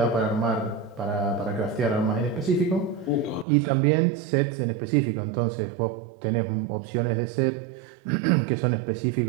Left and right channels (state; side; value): drops out; left; at 3.5 s